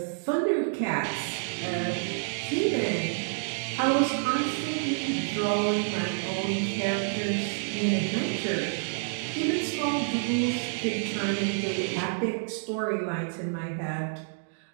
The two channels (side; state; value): left; silent; digital silence